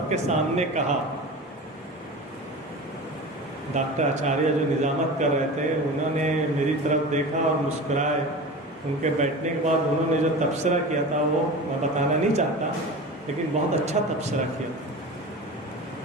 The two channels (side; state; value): both; normal; correlation 0.32